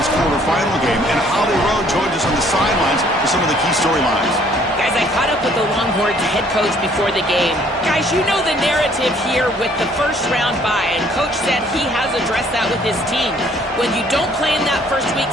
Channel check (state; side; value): normal; both; correlation 0.61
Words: quarterfinal game, and Holly Rowe joins us on the sidelines for some of the key storylines. Guys, I caught up with the Longhorns head coach before the game. Guys, you know the narrative here with the first round bye, and Coach said he has addressed that with his team. When you don't play in that first week,